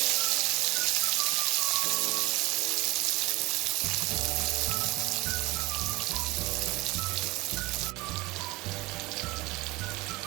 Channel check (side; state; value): left; quieter; 22.0 dB